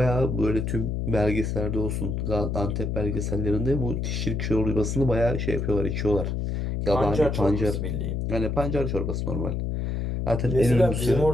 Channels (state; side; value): noise; left; hum, 1 dB below the sound